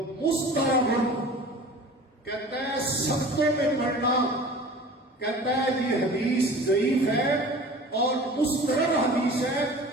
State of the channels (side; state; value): both; normal; correlation 0.41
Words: مسترب. کہتا ہے سبتوں میں پڑھنا، کہتا ہے یہ حدیث ضعیف ہے اور مسترب حدیث ہے،